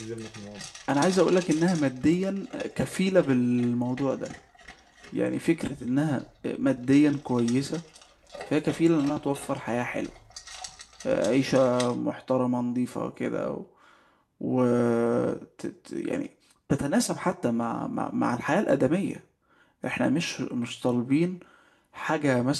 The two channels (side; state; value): both; identical; correlation 1.00